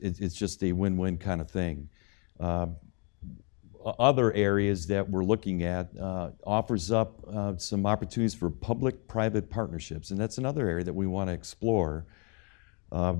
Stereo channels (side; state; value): right; quieter; 34.7 dB